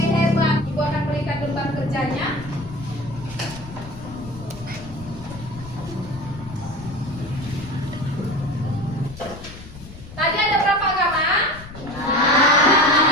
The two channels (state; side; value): noise; left; rumble, 15 dB below the sound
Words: hebat. Ibu akan berikan lembar kerjanya. Tadi ada berapa agama?